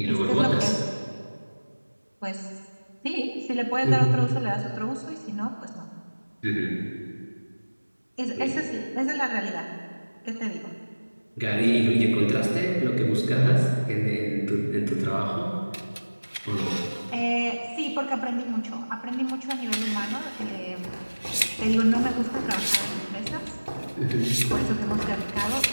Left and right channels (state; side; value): inverted; both; correlation -1.00